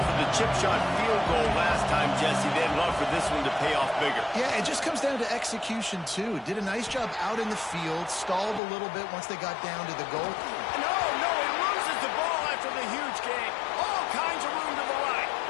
for the chip shot field goal last time, Jesse. They'd love for this one to pay off bigger. Yeah, it just comes down to execution, too. Did a nice job out in the field, stalled a little bit once they got down to the goal. No, he loses the ball after the huge gain. All kinds of room to the right.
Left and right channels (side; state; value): right; drops out; at 8.6 s